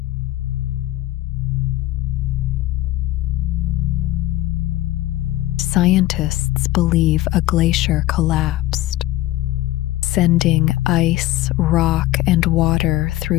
Scientists believe a glacier collapsed, sending ice, rock, and water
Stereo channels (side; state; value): right; quieter; 15.9 dB